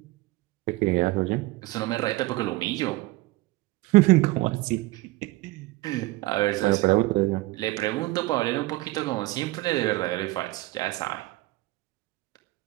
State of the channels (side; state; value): left; quieter; 19.5 dB